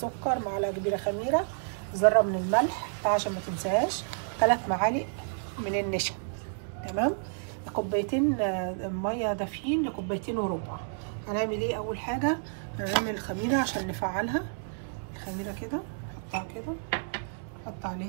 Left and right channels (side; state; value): left; silent; digital silence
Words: معلقه كبيره خميره، ذره من الملح عشان ما تنساهاش، 3 معالق من النشا. تمام. كوبايتين ميه دافيين لكوبايتين وربع. هنعمل ايه؟ اول حاجه هنعمل الخميره عشان نفعلها. الخميره كده نحطها كده، نحط